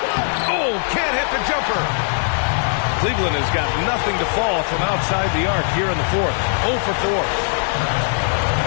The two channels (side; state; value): right; silent; digital silence